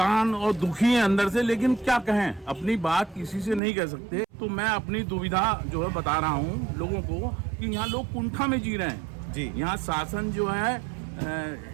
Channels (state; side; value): drops out; left; at 3.6 s